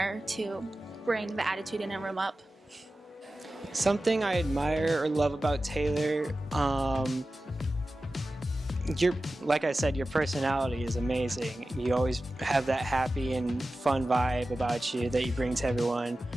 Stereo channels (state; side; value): normal; both; correlation 0.95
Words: to bring the attitude in a room up. Something I admire or love about Taylor, like I said, your personality is amazing. You always have that happy and fun vibe about you that you bring to everyone.